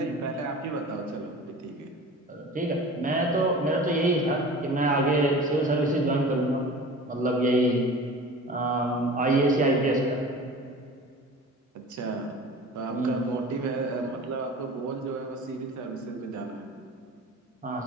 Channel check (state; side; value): normal; both; correlation 0.38